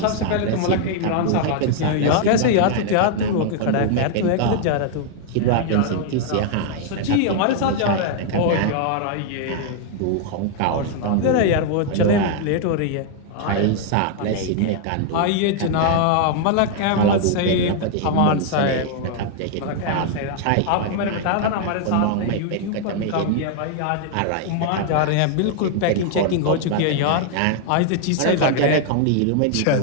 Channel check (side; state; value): both; different; correlation 0.00